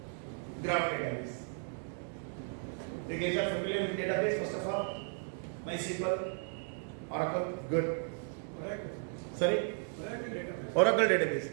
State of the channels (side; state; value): left; silent; 54 dB below the other